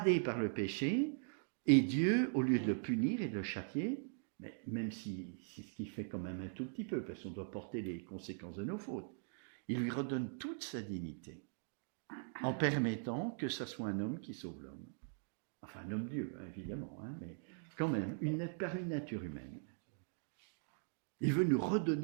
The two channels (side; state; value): left; silent; digital silence